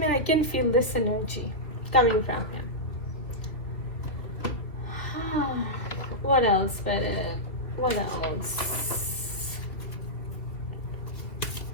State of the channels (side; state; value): right; late; 2.9 ms